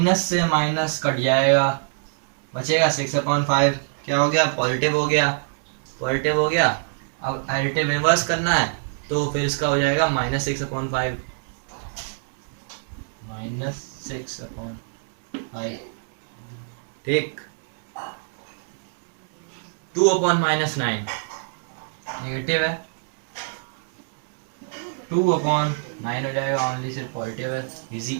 से माइनस कट जाएगा, बचेगा 6 अपॉन 5. क्या हो गया? पॉजिटिव हो गया. पॉजिटिव हो गया. अब एडिटिव इनवर्स करना है तो फिर इसका हो जाएगा माइनस 6 अपॉन 5. Minus 6 upon 5. ठीक. 2 अपॉन माइनस 9 नेगेटिव है. 2 अपॉन 9 हो जाएगा, ओनली सिर्फ पॉजिटिव है. इजी.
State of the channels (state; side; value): silent; left; digital silence